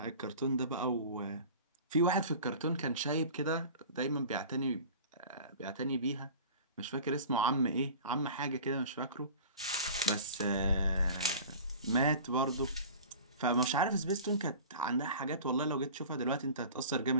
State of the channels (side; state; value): both; inverted; correlation -0.39